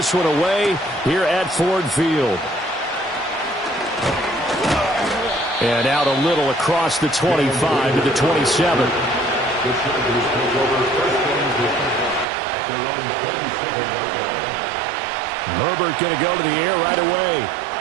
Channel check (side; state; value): left; drops out; at 12.2 s